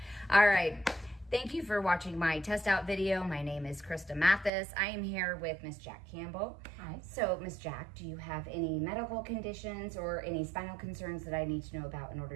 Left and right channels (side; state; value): left; drops out; at 4.5 s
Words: All right. Thank you for watching my test out video. My name is Krista Matthes. I am here with Miss Jack Campbell. Hi. So, Miss Jack, do you have any medical conditions or any spinal concerns that I need to know about in